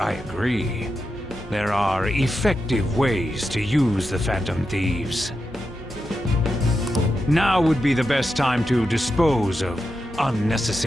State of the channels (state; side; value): normal; both; correlation 0.88